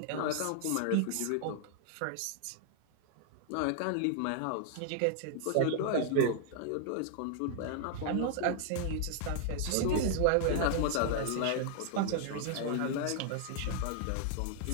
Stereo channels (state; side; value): different; both; correlation 0.00